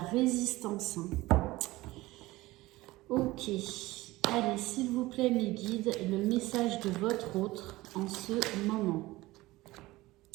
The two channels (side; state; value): left; quieter; 19.0 dB